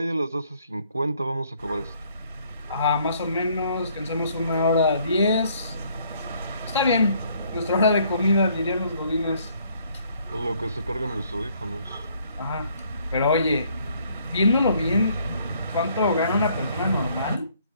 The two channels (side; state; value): both; inverted; correlation -0.65